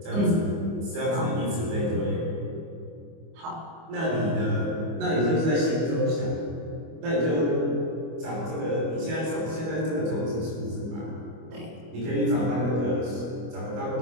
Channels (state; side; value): late; left; 25 ms